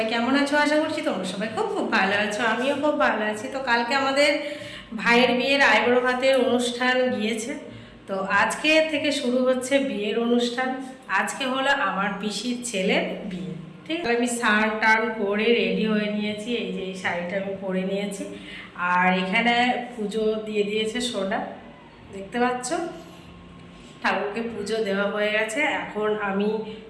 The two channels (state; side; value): identical; both; correlation 1.00